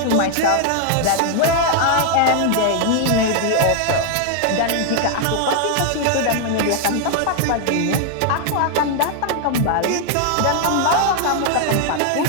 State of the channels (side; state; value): both; different; correlation 0.00